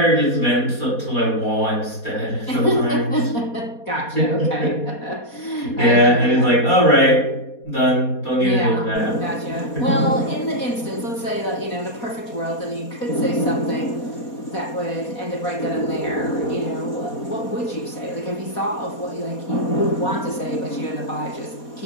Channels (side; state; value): right; late; 4.2 ms